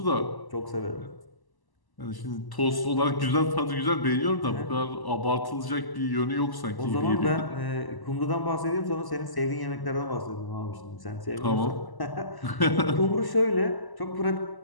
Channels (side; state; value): right; late; 1.0 ms